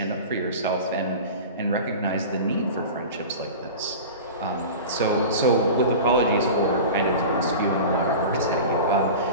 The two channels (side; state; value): both; inverted; correlation -0.32